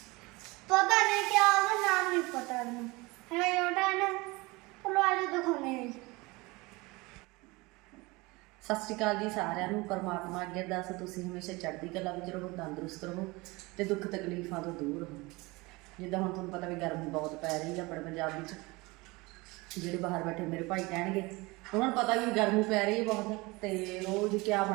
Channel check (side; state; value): left; quieter; 23.6 dB